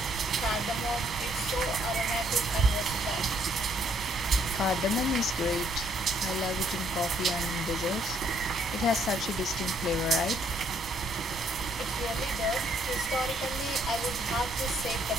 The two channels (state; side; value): normal; both; correlation 0.68